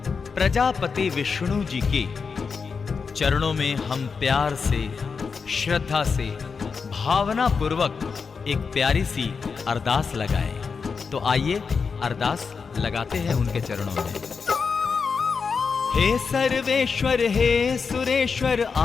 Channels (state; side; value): quieter; right; 5.4 dB